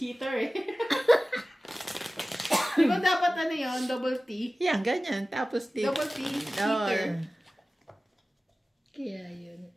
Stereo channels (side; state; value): both; normal; correlation 0.97